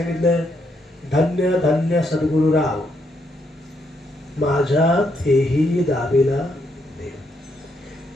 धन्य धन्य सद्गुरु राव, माझ्या तेही दाबेला देव.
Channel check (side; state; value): both; normal; correlation 0.76